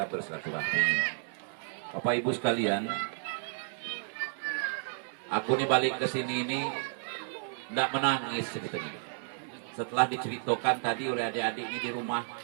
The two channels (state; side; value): silent; left; digital silence